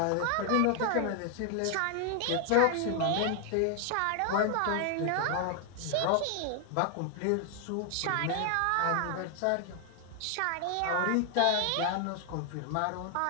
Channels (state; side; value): different; both; correlation 0.00